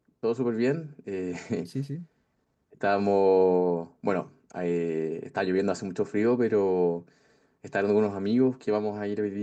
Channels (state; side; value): identical; both; correlation 1.00